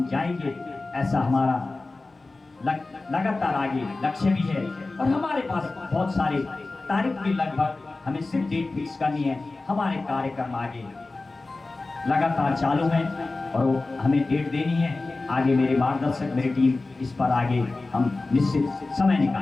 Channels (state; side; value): quieter; right; 3.4 dB